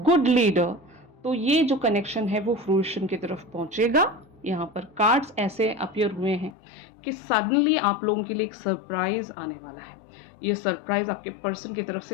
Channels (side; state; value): right; drops out; at 6.6 s